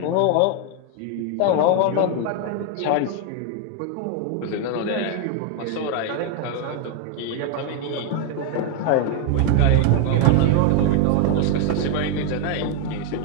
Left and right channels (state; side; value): different; both; correlation 0.01